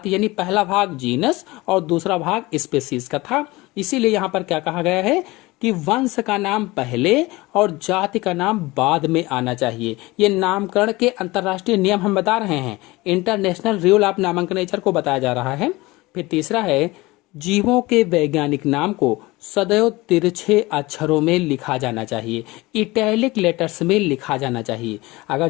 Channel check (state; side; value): quieter; right; 21.3 dB